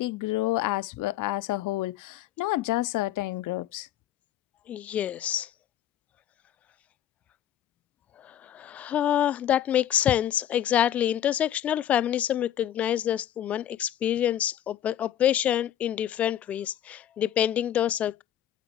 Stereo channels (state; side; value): quieter; right; 11.1 dB